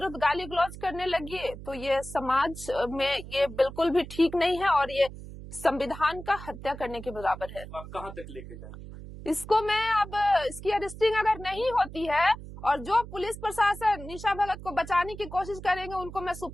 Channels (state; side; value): noise; right; hum, 13 dB below the sound